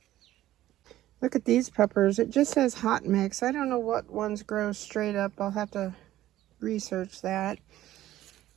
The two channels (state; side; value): quieter; left; 14.1 dB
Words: Look at these peppers. It just says hot mix. I don't know what ones grow straight up. I'll have to research that.